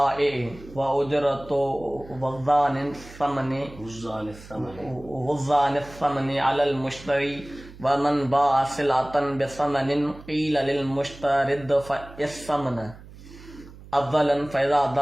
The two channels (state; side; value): noise; right; hum, 18 dB below the sound